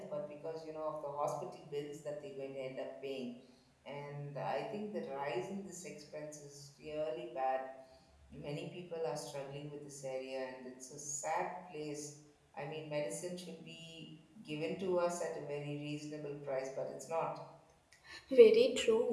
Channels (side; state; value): both; identical; correlation 1.00